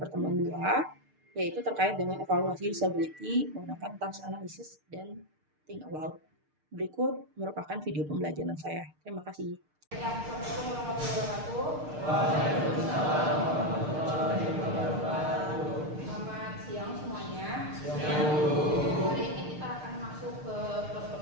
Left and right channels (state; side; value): late; left; 6.6 ms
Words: 2, yaitu terkait dengan evaluasi usability menggunakan task analysis dan think aloud. Berikut merupakan video pembelajaran saya. Terima kasih. Assalamualaikum warahmatullahi wabarakatuh. Selamat siang semuanya. Hari ini kita akan masuk ke